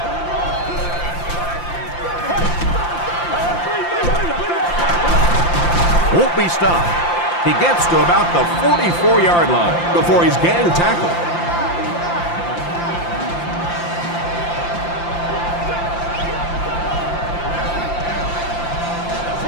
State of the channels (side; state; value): right; late; 5.8 ms